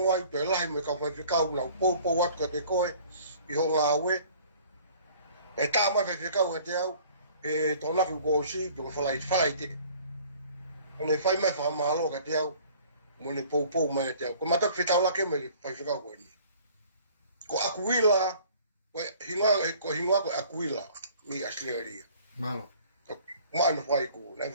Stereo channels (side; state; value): both; inverted; correlation -0.52